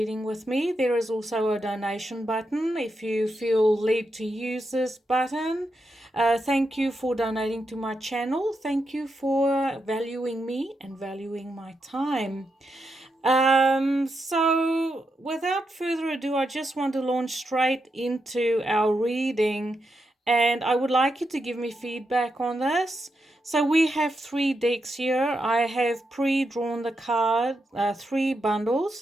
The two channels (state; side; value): normal; both; correlation 0.84